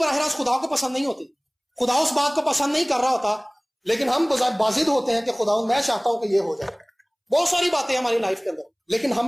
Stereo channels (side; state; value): both; identical; correlation 1.00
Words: راست خدا کو پسند نہیں ہوتی. خدا اس بات کو پسند نہیں کر رہا ہوتا، لیکن ہم بازد ہوتے ہیں کہ خدا میں چاہتا ہوں کہ یہ ہو جائے. بہت ساری باتیں ہماری لائف کے اندر، لیکن